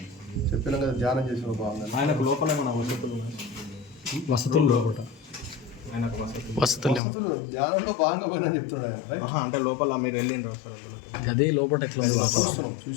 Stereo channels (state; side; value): drops out; right; at 7.0 s